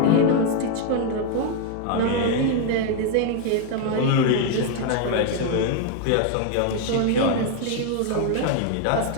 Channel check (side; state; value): both; different; correlation 0.00